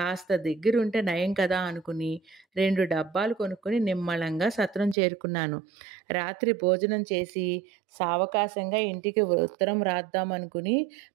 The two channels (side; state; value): left; drops out; at 5.0 s